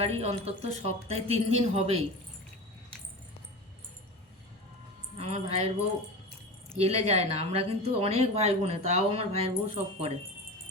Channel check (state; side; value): normal; both; correlation 0.28